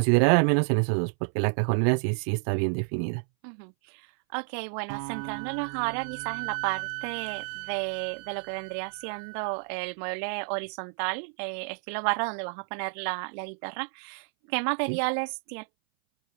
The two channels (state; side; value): silent; left; 58 dB below the other